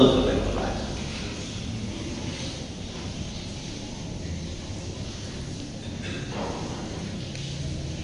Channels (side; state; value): both; identical; correlation 1.00